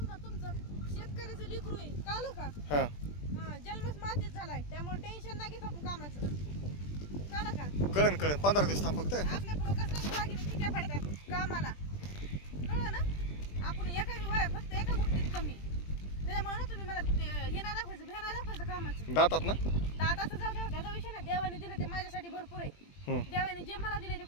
तुमचं शेतकऱ्याचं लेकरू आहे कळलं का हा जन्मच मातीच झालाय त्यामुळे टेन्शन नाही घेत आपण कामाचं कळलं का कळेल 15 दिवस थांब फक्त आपल्या पुढं कसं बाकी ठिकाण पडतात कामाला कळलं ना आपण फक्त एका गोष्टीत कमी त्याच्यामुळे ना तुम्ही मला हे नाही दाखवायचं भ्या नाही दाखवायचं कामाचं दातात ना दाताचं जाऊ द्या त्याचा विषय ना देवाने दिलं ते माझ्यासाठी भरपूर आहे देवाने जे मला दिले ते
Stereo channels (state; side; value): late; right; 20 ms